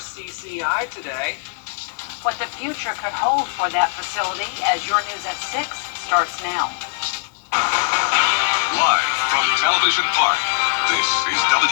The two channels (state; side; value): silent; right; digital silence